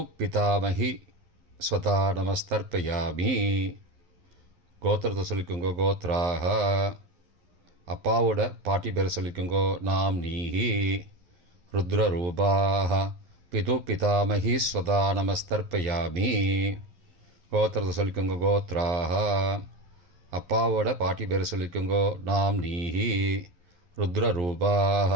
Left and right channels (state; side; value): late; left; 11 ms